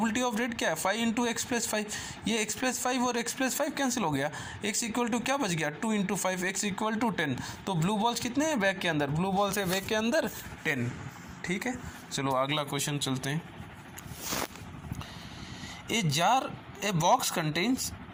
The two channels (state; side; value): identical; both; correlation 1.00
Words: ऑफ रेड क्या है 5 इंटू x + 5। ये x + 5 और x + 5 कैंसिल हो गया, x = क्या बच गया 2 इंटू 5, x = 10। तो ब्लू बॉल्स कितने हैं बैग के अंदर, ब्लू बॉल्स है बैग के अंदर 10। ठीक है, चलो अगला क्वेश्चन चलते हैं। ए बॉक्स कंटेन्स